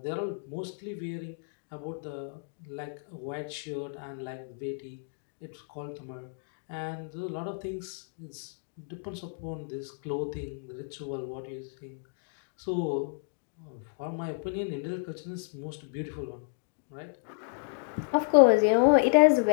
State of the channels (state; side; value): silent; right; digital silence